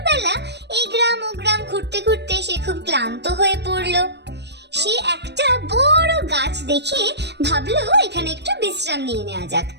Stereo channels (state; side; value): late; left; 0.50 ms